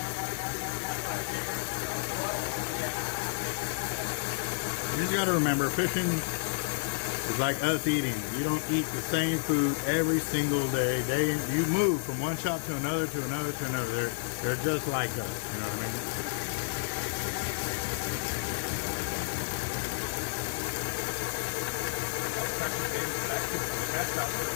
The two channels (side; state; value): right; silent; digital silence